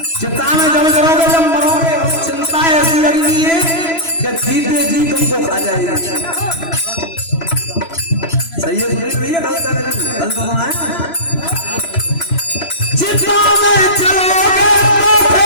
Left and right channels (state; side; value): late; right; 3.0 ms